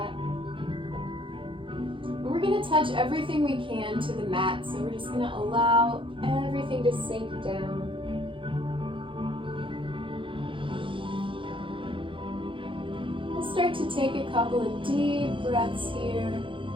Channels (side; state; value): left; late; 0.25 ms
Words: And we're gonna touch everything we can to the mat. So we're just gonna allow everything to sink down. We'll start to take a couple of deep breaths here.